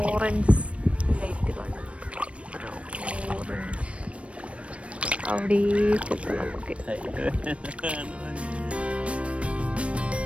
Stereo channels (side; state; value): left; late; 0.062 ms